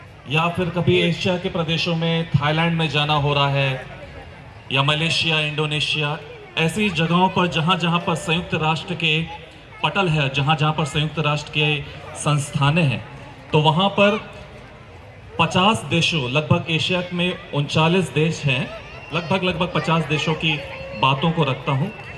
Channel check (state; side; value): identical; both; correlation 1.00